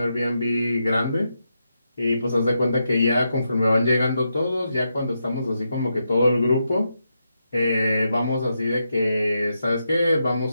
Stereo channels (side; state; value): both; inverted; correlation -0.84